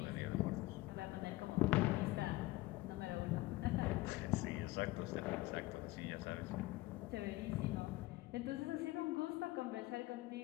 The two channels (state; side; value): quieter; right; 19.2 dB